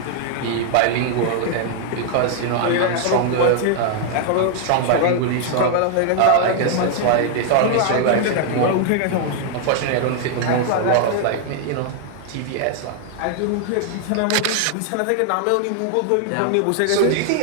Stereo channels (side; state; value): both; different; correlation 0.00